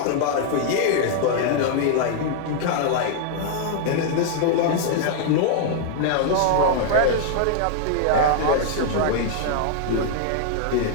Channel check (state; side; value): different; both; correlation 0.00